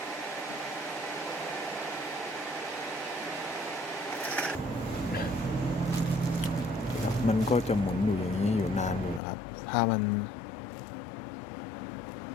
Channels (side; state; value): right; drops out; at 9.2 s